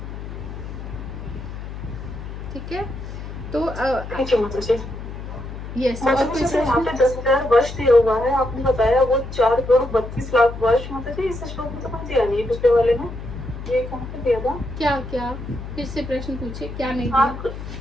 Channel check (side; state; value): left; noise; hum, 9 dB below the sound